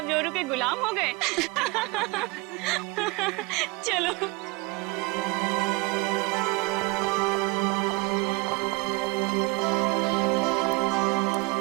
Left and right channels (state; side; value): quieter; left; 24.8 dB